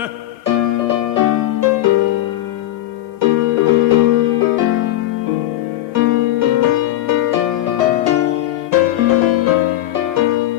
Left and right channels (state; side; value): quieter; right; 14.3 dB